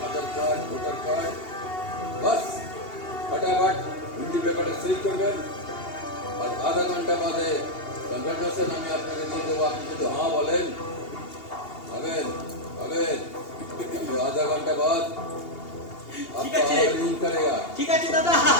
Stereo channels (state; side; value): late; right; 2.8 ms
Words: আধার কার্ড, ভোটার কার্ড, বাস ফটাফট হিন্দি পেপারে সই করবেন, আর আধা ঘন্টা বাদে কনফার্মেশন আমি আপনাকে দিয়ে দেবো। আপনি যদি হ্যাঁ বলেন, হবেন হবেন, আধা ঘন্টা বাদ आपका लिंक करेगा। ঠিক আছে দাদা,